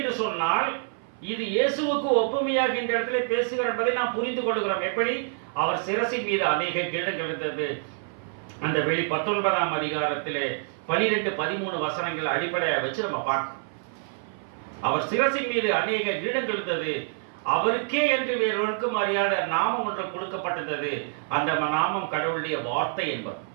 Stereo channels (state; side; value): silent; left; 56 dB below the other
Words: சொன்னால் இது இயேசுவுக்கு ஒப்புமையாக இந்த இடத்துல பேசுகிறார் என்பதை நாம் புரிந்து கொள்கிறோம். எப்படி அவர் சிரசின் மீது அநேக கிரீடங்கள் இருந்தது. அந்த வெளி 19ஆம் அதிகாரத்திலே 12-13 வசனங்கள் அடிப்படையாக வச்சு நம்ம பார்க்கணும். அவர் சிரசின் மீது அநேக கிரீடங்கள் இருந்தது. அவருக்கே என்று வேறொருக்கும் அறியாத நாமம் ஒன்று கொடுக்கப்பட்டது. அந்த நாமம் கடவுளுடைய வார்த்தை என்பது.